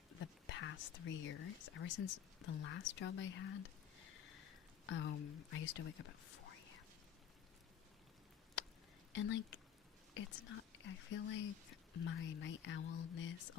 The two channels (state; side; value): quieter; right; 9.1 dB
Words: the past 3 years, ever since the last job I had, I used to wake up at 4 a.m. And like, it's not, I feel like my night owlness,